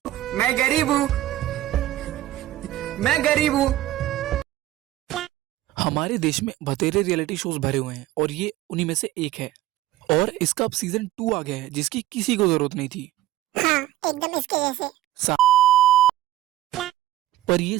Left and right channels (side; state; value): left; quieter; 14.5 dB